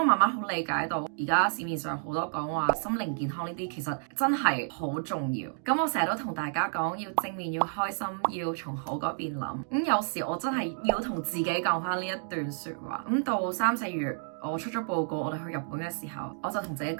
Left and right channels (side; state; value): left; silent; digital silence